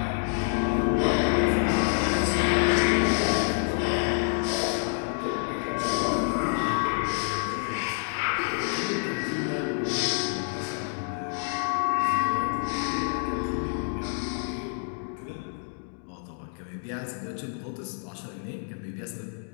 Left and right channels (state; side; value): silent; right; 60 dB below the other